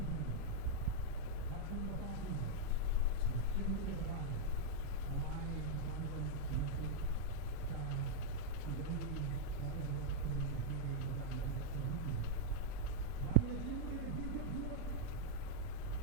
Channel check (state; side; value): different; both; correlation -0.02